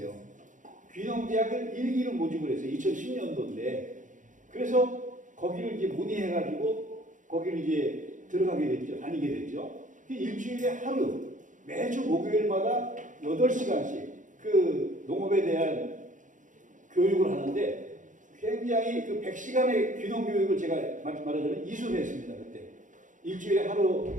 귀농대학을 1기로 모집을 했어요. 2010년도인데. 그래서 거기를 이제 문의해가지고 거기를 이제 들어가게 됐죠. 다니게 됐죠. 일주일에 하루, 매주 목요일마다 8시간씩 그 농업에 대한 교육을 하는데 굉장히 그 100시간의 귀농교육을 제가 말하자면 이수를 했습니다. 그때. 일주일에 하루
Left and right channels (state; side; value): late; left; 0.37 ms